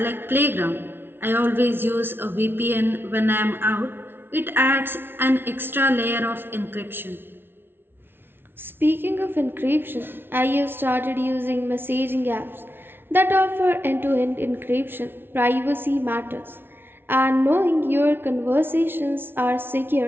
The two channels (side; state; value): left; late; 0.11 ms